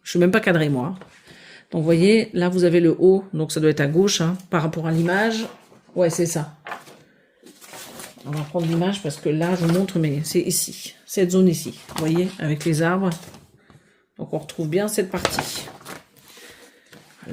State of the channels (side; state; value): both; identical; correlation 1.00